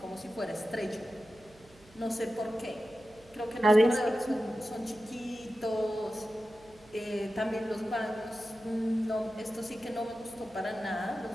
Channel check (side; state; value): right; noise; hum, 26 dB below the sound